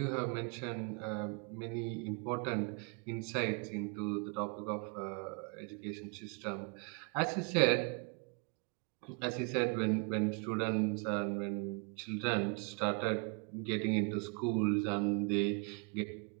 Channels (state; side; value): quieter; left; 33.1 dB